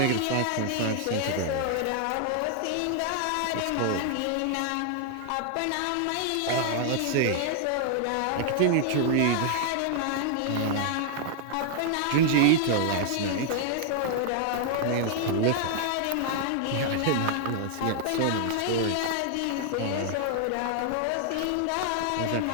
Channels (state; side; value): different; both; correlation -0.01